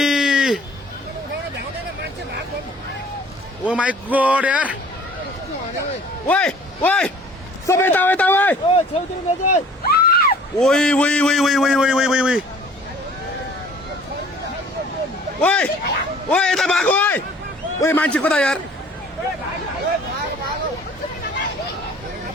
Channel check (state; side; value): normal; both; correlation 0.51